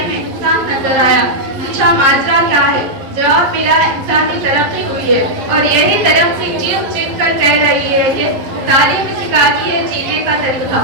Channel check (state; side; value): late; left; 11 ms